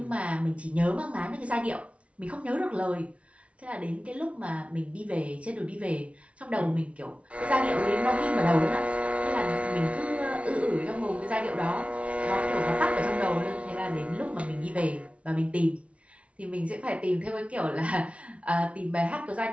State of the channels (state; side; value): late; left; 0.063 ms